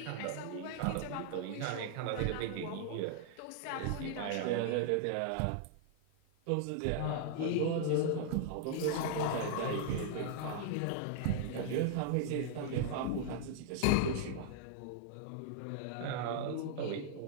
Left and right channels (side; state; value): both; different; correlation -0.01